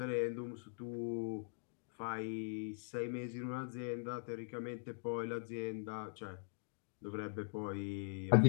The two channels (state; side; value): silent; right; digital silence